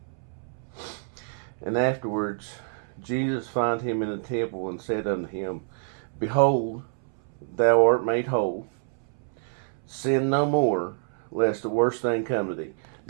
And afterwards, Jesus found him in the temple and said unto him, Behold, thou art made whole. Sin no more, lest the worst thing come to thee.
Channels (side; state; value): left; silent; 60 dB below the other